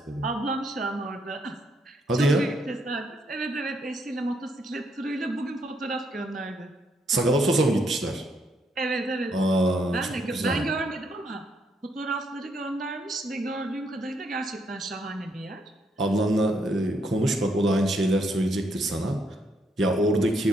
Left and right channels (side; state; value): both; normal; correlation 0.74